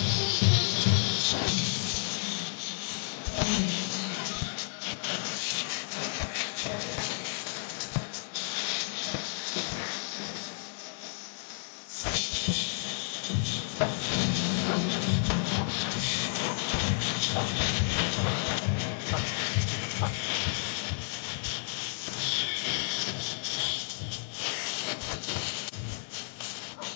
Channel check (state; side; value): silent; right; digital silence